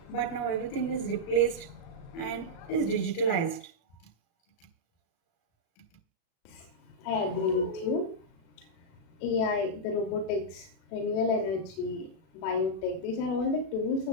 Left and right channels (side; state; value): right; late; 36 ms